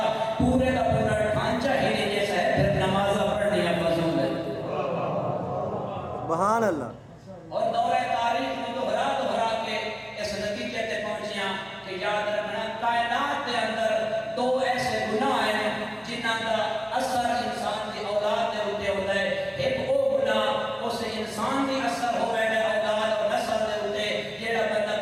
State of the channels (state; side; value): identical; both; correlation 1.00